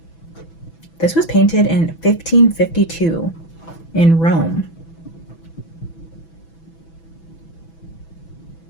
This was painted in 1552 in Rome.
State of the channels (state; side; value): late; right; 6.0 ms